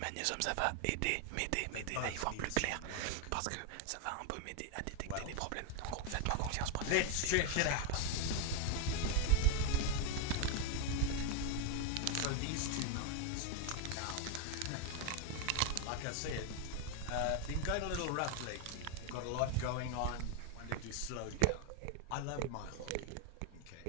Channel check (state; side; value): different; both; correlation 0.01